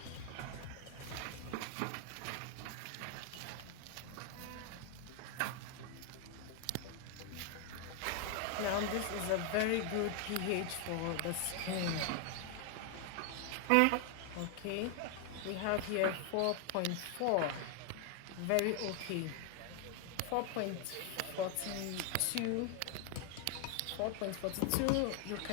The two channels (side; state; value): both; different; correlation 0.00